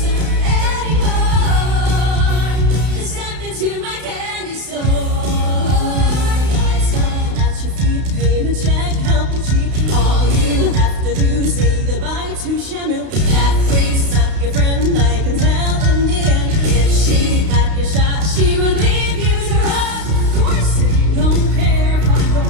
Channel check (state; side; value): late; left; 32 ms